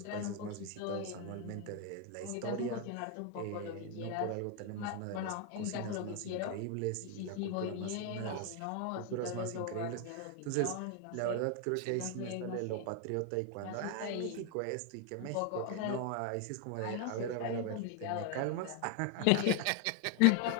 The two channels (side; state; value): both; different; correlation 0.01